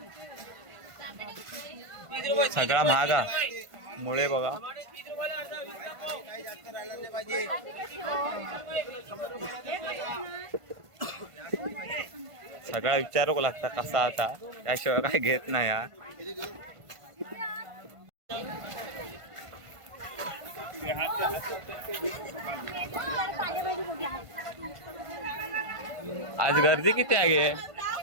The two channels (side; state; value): left; late; 1.5 ms